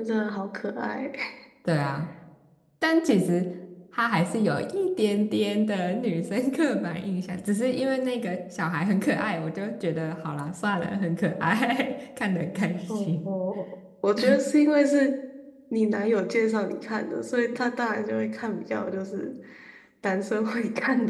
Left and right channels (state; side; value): identical; both; correlation 1.00